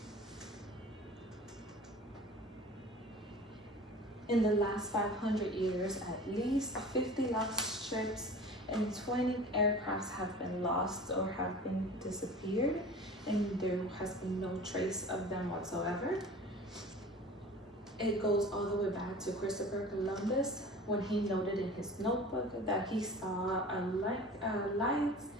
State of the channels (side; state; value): both; normal; correlation 0.40